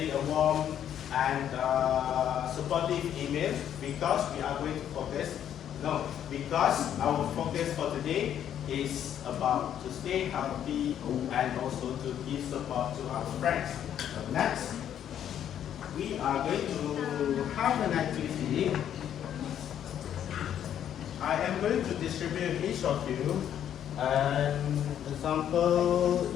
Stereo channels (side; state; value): right; quieter; 10.0 dB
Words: a warm and supportive email, because we are going to focus, because our focus for today is about to stay healthy and also to give support to our friends. So next, we are going to have an activity. I am going to distribute each of you an example